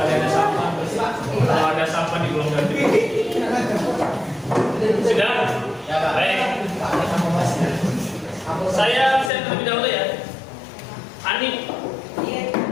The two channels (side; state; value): right; drops out; at 9.3 s